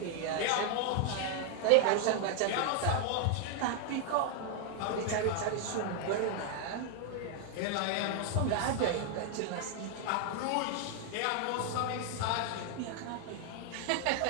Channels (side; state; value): both; different; correlation 0.00